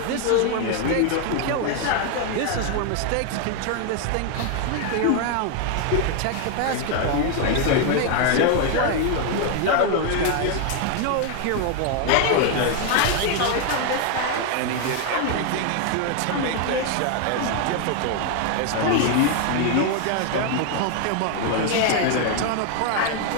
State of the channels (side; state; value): both; different; correlation 0.01